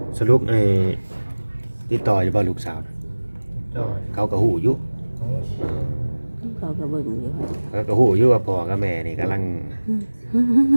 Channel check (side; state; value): both; inverted; correlation -1.00